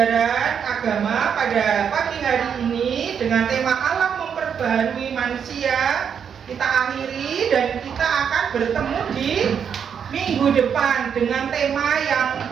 agama pada pagi hari ini dengan tema Allah memperbaharui manusia. Kita akhiri dan kita akan bertemu di minggu depan dengan tema yang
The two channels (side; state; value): left; quieter; 7.5 dB